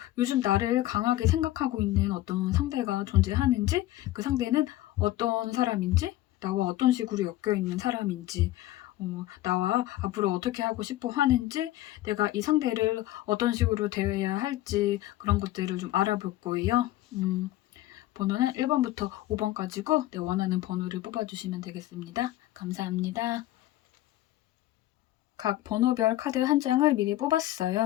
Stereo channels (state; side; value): quieter; right; 15.4 dB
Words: 요즘 나를 강하게 생각하고 있는 어떤 상대가 존재하는지, 그 상대는 어떤 사람인지, 나와 어떤 식으로 엮여 있는 사람인지, 나와 앞으로 어떻게 하고 싶어 하는지, 내가 이 상대를 어떤 식으로 대해야 할지 그런 것들을 좀 알아볼 거예요. 번호는 1번부터 5번까지고 내 원하는 번호를 뽑아주시면 되겠습니다. 감사합니다. 각 번호별 카드 한 장을 미리